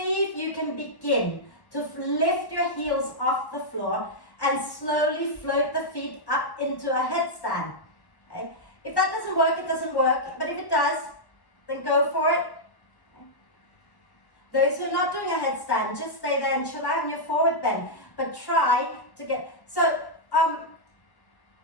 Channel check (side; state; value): right; late; 1.1 ms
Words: if you can begin to lift your heels off the floor and slowly float the feet up into a headstand, okay? If that doesn't work, it doesn't work, but if it does, then go for it. Okay? Those who are not doing a headstand, just stay there and chill out in your forward bend, but try to get, so,